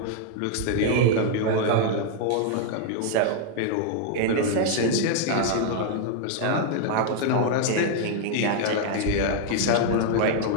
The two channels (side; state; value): both; different; correlation 0.00